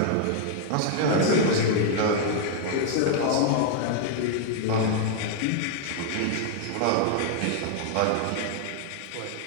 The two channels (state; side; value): different; both; correlation 0.00